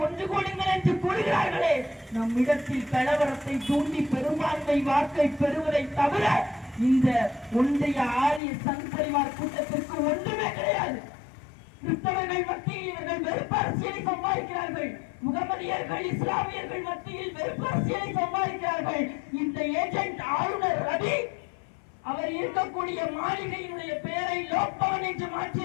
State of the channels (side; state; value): right; drops out; at 8.4 s